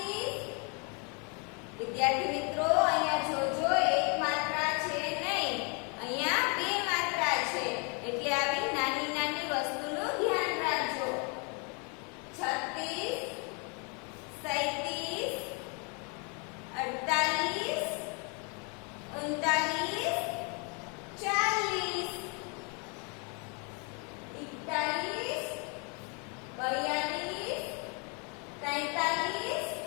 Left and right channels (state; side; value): quieter; right; 34.8 dB